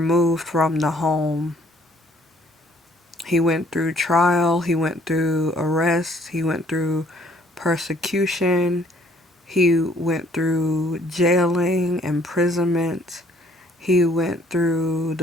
from the home. He went through trial, he went through arrest, he went through persecution, he went through jailing, imprisonment, he went through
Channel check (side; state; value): both; normal; correlation 0.62